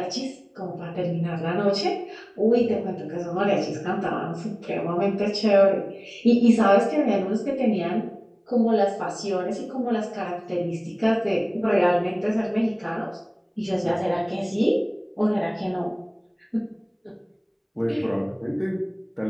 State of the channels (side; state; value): both; identical; correlation 1.00